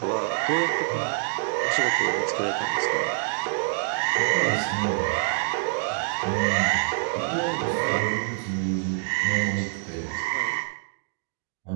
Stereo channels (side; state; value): left; silent; digital silence